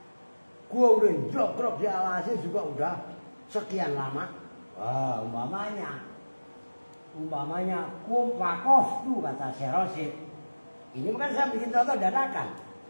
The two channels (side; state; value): both; inverted; correlation -1.00